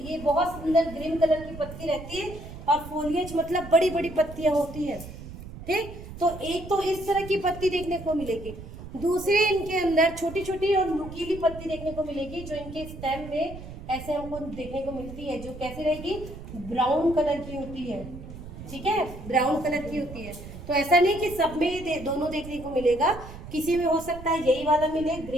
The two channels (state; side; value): noise; right; rumble, 13 dB below the sound